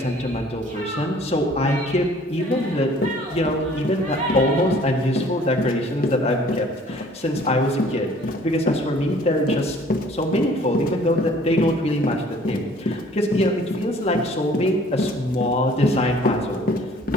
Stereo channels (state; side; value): normal; both; correlation 0.54